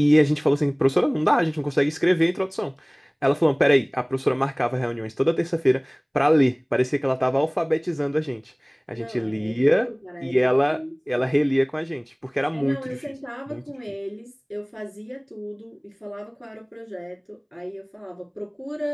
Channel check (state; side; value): identical; both; correlation 1.00